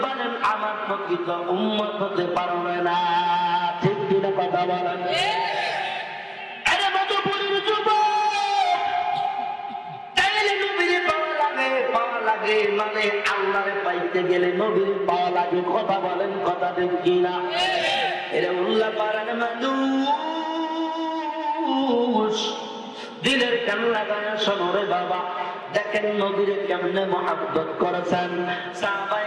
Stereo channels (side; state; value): both; identical; correlation 1.00